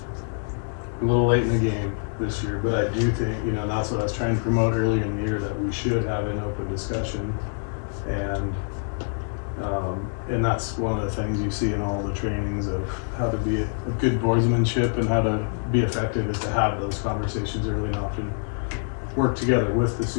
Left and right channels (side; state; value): right; silent; digital silence